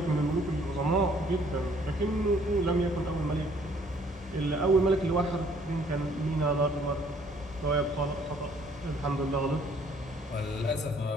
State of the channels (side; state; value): both; normal; correlation 0.61